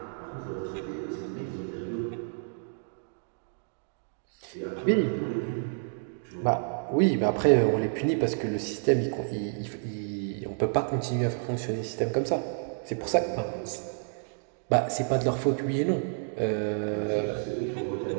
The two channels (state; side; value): silent; left; digital silence